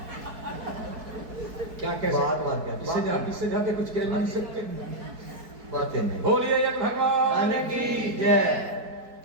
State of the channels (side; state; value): left; late; 4.6 ms